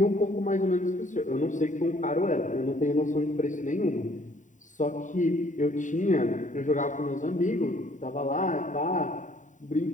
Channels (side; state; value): right; late; 0.36 ms